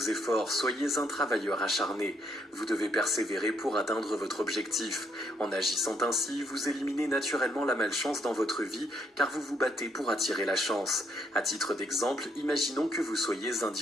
soyez un travailleur acharné. Vous devez persévérer pour atteindre votre objectif. En agissant ainsi, vous éliminez naturellement la malchance dans votre vie, car vous vous battez pour attirer la chance. À titre d'exemple, imaginons que vous soyez un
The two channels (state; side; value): normal; both; correlation 0.73